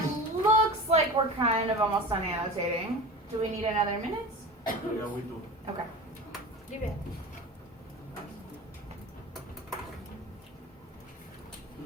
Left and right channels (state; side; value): normal; both; correlation 0.33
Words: looks like we're kind of almost done annotating. Do we need another minute? Yeah, we do. Okay. Give it.